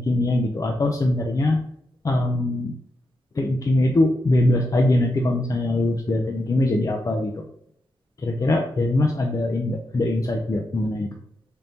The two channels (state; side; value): normal; both; correlation 0.85